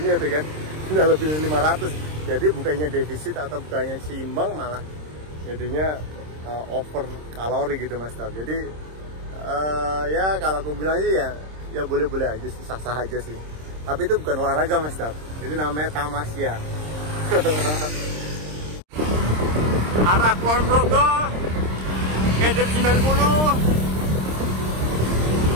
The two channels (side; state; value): left; late; 26 ms